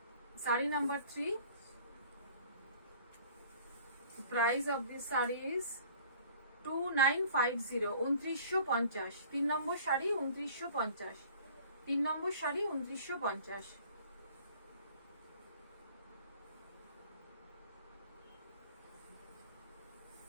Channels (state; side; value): inverted; both; correlation -0.50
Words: Sari number 3, the price of this sari is 2950, 2950. 3 নম্বর শাড়ি 2950, 3 নম্বর শাড়ি 2950।